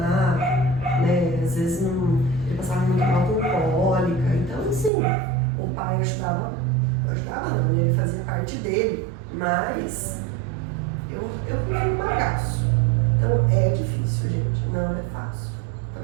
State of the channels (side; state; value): left; drops out; at 4.9 s